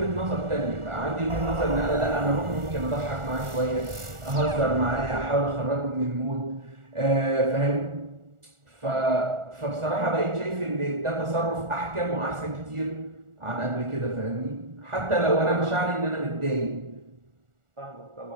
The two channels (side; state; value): left; late; 1.4 ms